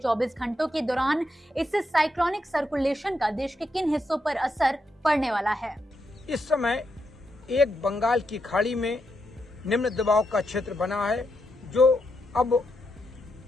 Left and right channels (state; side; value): normal; both; correlation 0.82